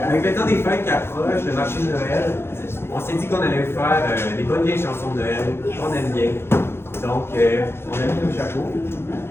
avec le temps des fêtes qui approchent, le marché de Noël, on s'est dit qu'on allait faire des bonnes vieilles chansons de Noël qu'on aime bien. Donc, on a mis nos chapeaux.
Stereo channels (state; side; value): late; right; 0.12 ms